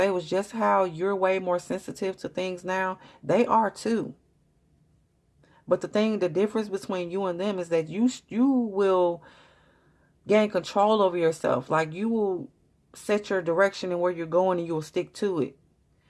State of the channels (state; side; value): identical; both; correlation 1.00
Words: was just how you're way more sensitive to things now. They are too. But the difference between you and them is that you will gain control over yourself. Like you will set your direction and where you're going and you will stick to it.